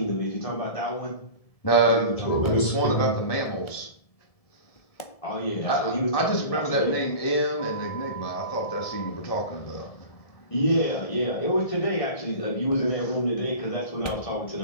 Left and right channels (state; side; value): late; right; 1.7 ms